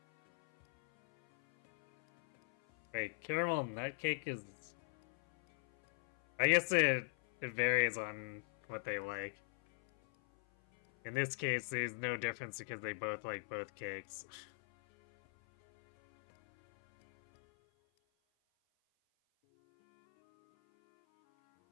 Wait, caramel nut cake is... I guess it varies on what they like. In this case, there's no difference because they both like both cakes.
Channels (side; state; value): right; silent; 52 dB below the other